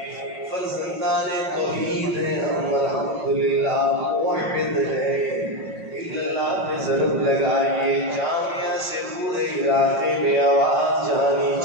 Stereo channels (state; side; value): late; left; 5.5 ms